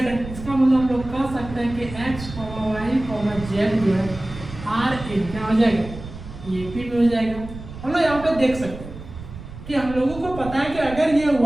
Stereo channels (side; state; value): right; noise; rumble, 13 dB below the sound